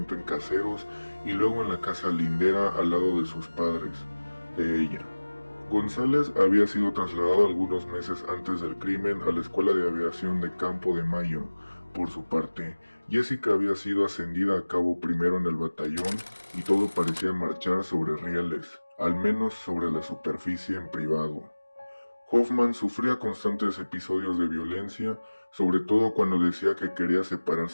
en Caseros y luego en la casa lindera al lado de sus padres, de ella. González había sido trasladado algunos meses antes del crimen a la Escuela de Aviación de Campo de Mayo. Por su parte, Jessica había sido ascendida a cabo primero en el batallón y todo parecía marchar sobre rieles, al menos sobre la superficie en privado. Hoffman sufría constantes episodios de violencia, sobre todo cuando decía que quería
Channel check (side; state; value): both; inverted; correlation -1.00